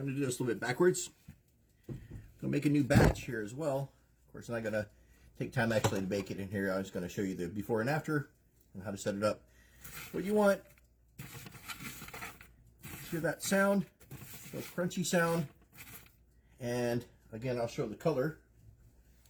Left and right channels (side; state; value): both; identical; correlation 1.00